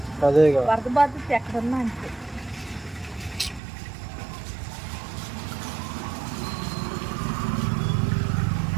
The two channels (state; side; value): drops out; left; at 3.6 s